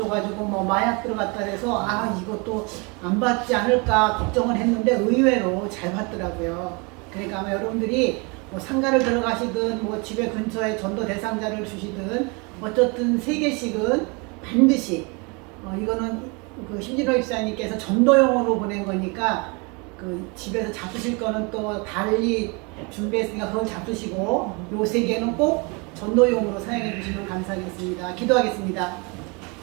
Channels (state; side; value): quieter; left; 30.4 dB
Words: 뭐 마약 들어갔다 해서 이것도 안 받지 않을까 걱정을 했는데 의외로 잘 받더라고요. 그러니까 아마 여러분들이 뭐 상가를 들어가시든 뭐 집에 근처에 전도 대상자를 주시든 어쨌든 3개씩은 반드시 이거는 그 심진호 입사님께서 전도용으로 보낸 거니까 그 집에서 잡수실 거는 또 달리 준비했으니까 그걸 잡수시고 요 3개는 꼭 전도용으로 사용해 주시면 감사하겠습니다. 기도하겠습니다.